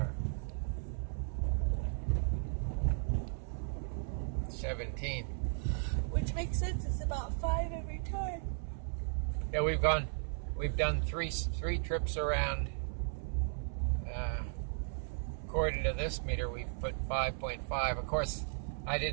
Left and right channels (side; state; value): left; silent; 54 dB below the other